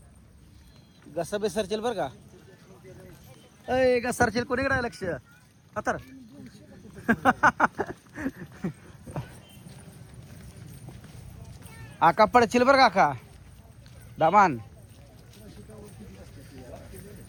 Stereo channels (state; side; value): identical; both; correlation 1.00